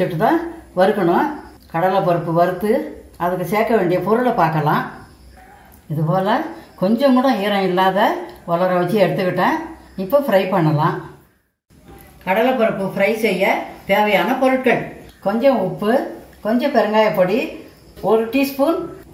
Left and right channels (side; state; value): both; identical; correlation 1.00